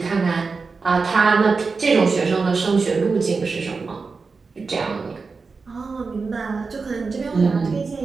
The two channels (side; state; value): left; quieter; 4.5 dB